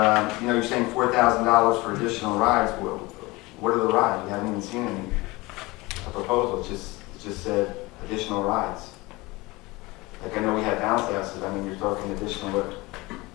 you know, you're saying $4,000 for additional rides. What are the rides? We haven't even seen a proposal. It just said additional rides. Like, I know we had bounce houses. I mean, you're talking additional, but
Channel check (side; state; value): right; quieter; 22.3 dB